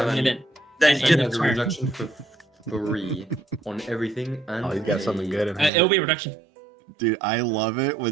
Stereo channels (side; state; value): left; drops out; at 5.7 s